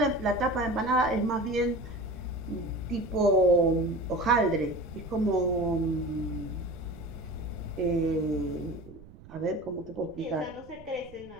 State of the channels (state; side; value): noise; right; rumble, 20 dB below the sound